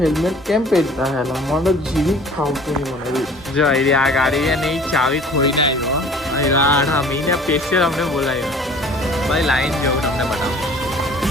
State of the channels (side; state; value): both; normal; correlation 0.49